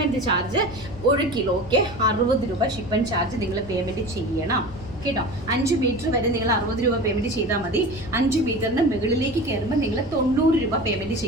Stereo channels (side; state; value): left; noise; rumble, 17 dB below the sound